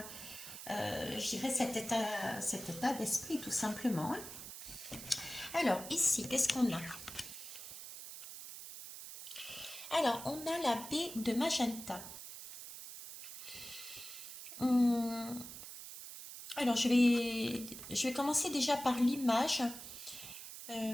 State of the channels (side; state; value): right; noise; hiss, 11 dB below the sound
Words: je dirais cet état d'esprit tout simplement, hein. Alors ici, qu'est-ce qu'on a? Alors, on a la baie de magenta. Hum, alors, je vais commencer déjà par l'image.